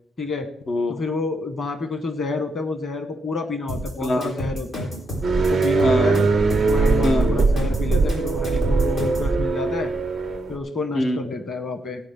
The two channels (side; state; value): both; normal; correlation 0.80